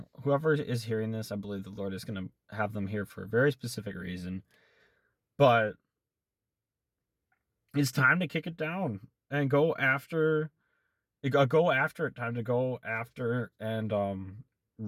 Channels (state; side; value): identical; both; correlation 1.00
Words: whoever is hearing this, I believe the Lord is going to have them here for a very specific reason. But it's time to kick it down and go after it. Go after it. Time to go after and